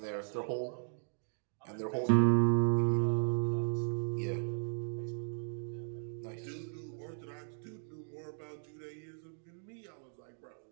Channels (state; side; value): silent; left; digital silence